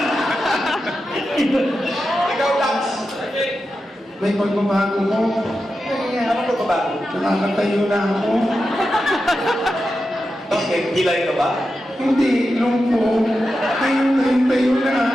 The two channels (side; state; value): both; normal; correlation 0.90